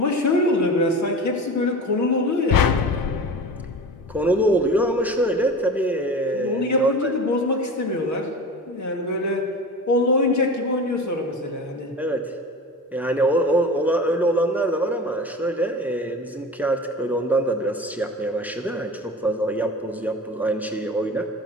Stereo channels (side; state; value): both; normal; correlation 0.33